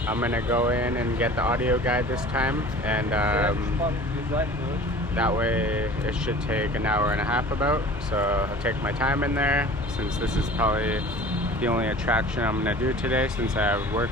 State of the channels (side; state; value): both; normal; correlation 0.43